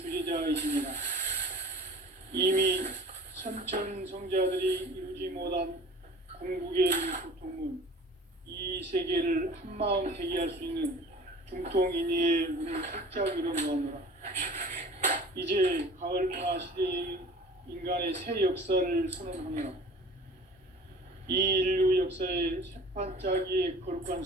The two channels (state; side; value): normal; both; correlation 0.44